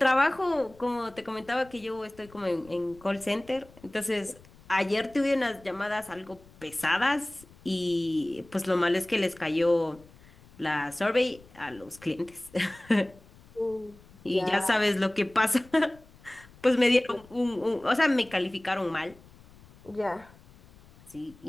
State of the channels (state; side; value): noise; left; rumble, 24 dB below the sound